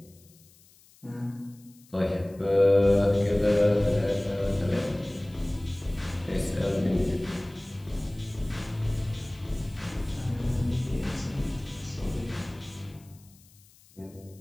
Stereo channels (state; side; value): noise; left; hiss, 27 dB below the sound